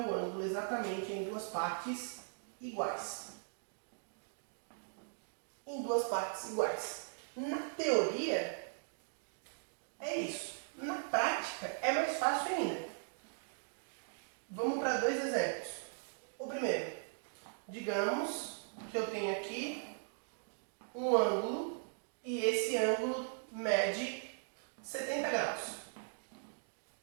ângulo exatamente em duas partes iguais. Em duas partes iguais. Na teoria, é isso. Na prática, é mais fácil ainda. Vamos para dois exemplos. O primeiro, digamos que eu tenho aqui um ângulo e esse ângulo mede 70 graus.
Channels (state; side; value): silent; left; digital silence